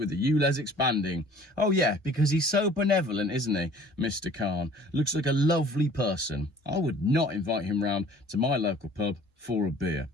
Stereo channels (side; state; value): both; normal; correlation 0.51